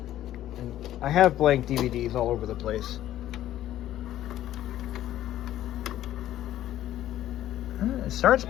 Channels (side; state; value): right; quieter; 13.0 dB